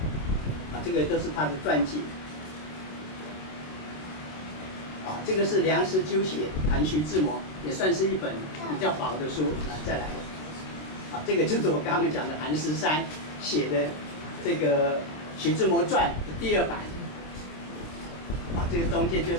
这个都是他的传记。这个是梁实秋写谈徐志摩，也算是一本比较薄的书。再来，这个就是我刚刚讲的韩十山写的这个徐志摩传的第2版。这个中间就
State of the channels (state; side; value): late; right; 26 ms